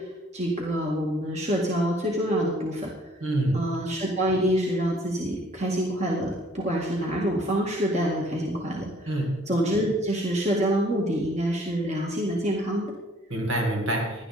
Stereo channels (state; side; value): normal; both; correlation 0.59